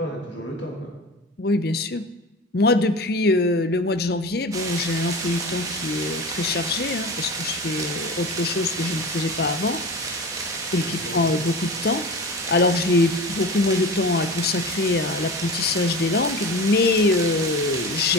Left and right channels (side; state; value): both; normal; correlation 0.32